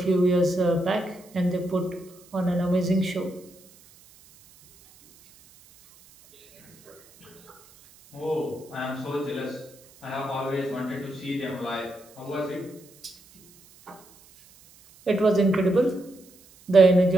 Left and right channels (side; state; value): right; noise; hiss, 26 dB below the sound